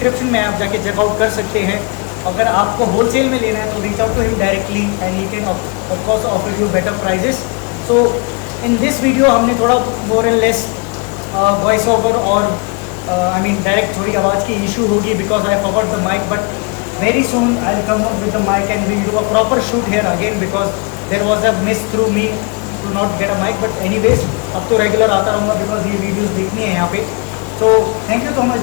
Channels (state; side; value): quieter; right; 31.5 dB